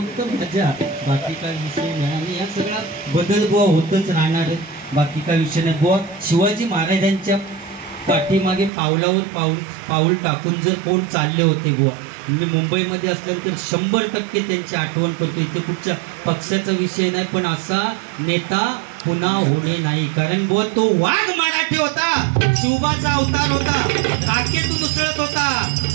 मजा, बाकी काय विषय नाही. आणि या सगळा बदल बुवा होतच राहणार आहे, बाकी काय विषय नाही बुवा. शिवाजी महाराजांच्या पाठीमागे पाऊल टाकून जर कोण चालले होते बुवा, मी मुंबईमध्ये असल्यानंतर 100% त्यांची आठवण करतो. इथे कुठच्या पक्षाचा विषय नाही, पण असा नेता पुन्हा होणे नाही. कारण बुवा तो वाघ मराठी होता, शिवबाचा अवतार होता, काकेतून उसळत होता,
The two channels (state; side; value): drops out; left; at 8.7 s